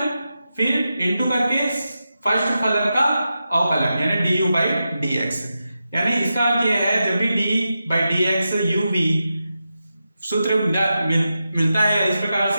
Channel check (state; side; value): inverted; both; correlation -0.90